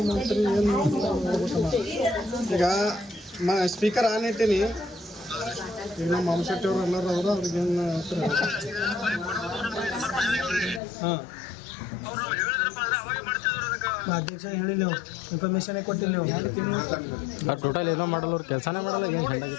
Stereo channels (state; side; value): drops out; right; at 10.8 s